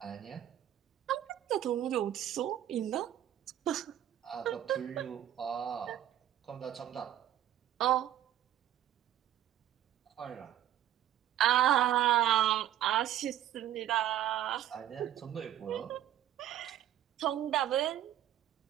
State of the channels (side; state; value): left; quieter; 11.5 dB